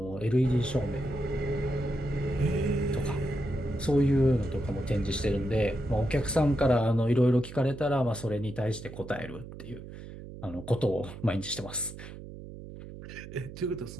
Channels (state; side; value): noise; right; hum, 13 dB below the sound